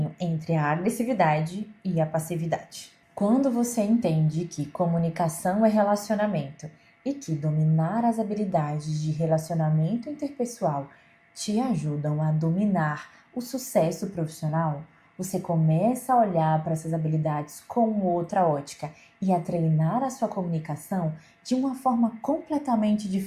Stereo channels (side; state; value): both; identical; correlation 1.00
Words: entre a agressividade e a passividade. Quando você entende que comunicação é relacionamento e que dominar as habilidades de relacionamento interpessoal te ajudam a dominar o sucesso profissional, você começa a olhar para essas habilidades com outra ótica e a treinar a sua comunicação de uma forma completamente